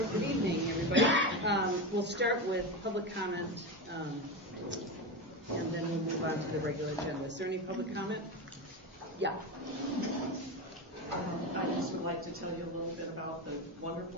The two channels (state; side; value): normal; both; correlation 0.18